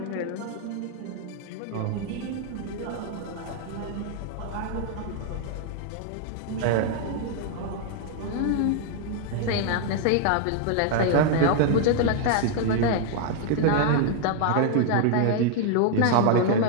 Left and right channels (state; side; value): different; both; correlation 0.00